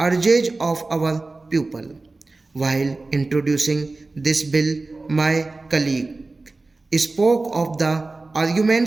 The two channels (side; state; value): left; quieter; 3.4 dB